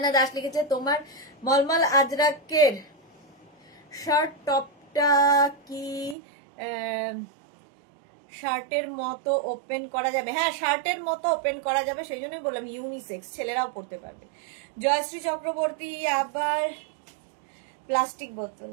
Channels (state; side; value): drops out; left; at 6.2 s